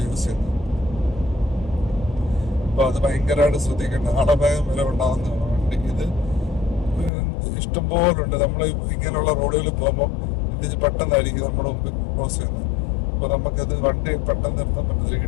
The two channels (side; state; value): right; drops out; at 7.1 s